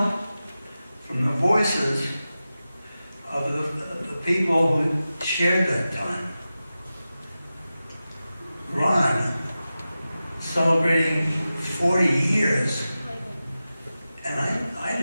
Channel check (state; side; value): inverted; both; correlation -0.94